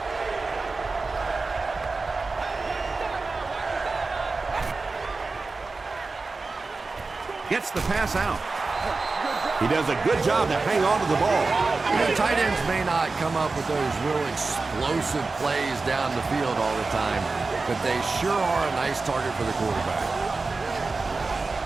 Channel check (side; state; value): left; quieter; 3.9 dB